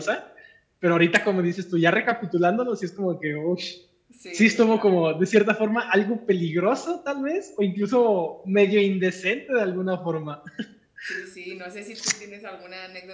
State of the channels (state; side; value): identical; both; correlation 1.00